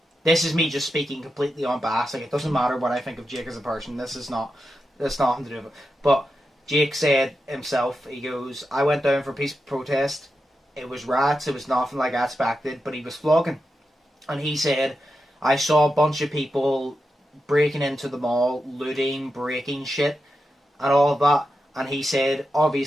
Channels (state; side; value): normal; both; correlation 0.89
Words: this is me just speaking completely on bass. Like, it doesn't matter what I think of Jake as a person. That's nothing to do with it. But Jake said himself, he goes, I went down for peaceful protest. It was rats, it was nothing like I expected, but he was flogging. And he said, I saw a bunch of people breaking into the mall, looting, breaking shit, and all of that. And he said,